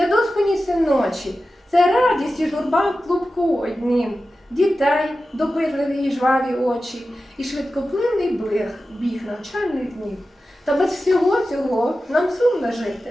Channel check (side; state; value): both; normal; correlation 0.93